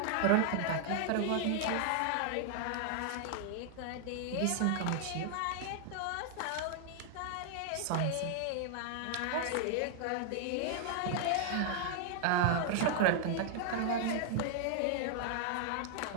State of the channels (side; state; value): both; different; correlation 0.00